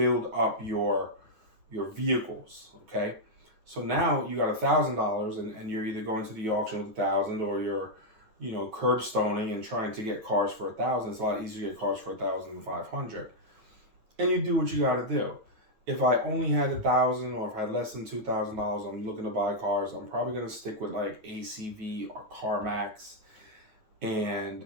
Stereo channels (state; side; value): late; left; 9.4 ms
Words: up your vehicles, okay? So now you got $1,000 and you're either going to the auction with $1,000 or you're, curb stoning and trying to get cars for $1,000. It's a lot easier to get cars for $1,500. And you do what you got to do. If I only had $1,000 or if I had less than $2,000, I'm looking to buy cars, I'm probably going to stick with like ACV or CarMax. And